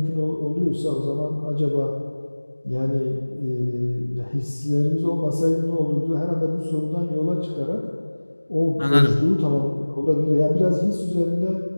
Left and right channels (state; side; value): inverted; both; correlation -1.00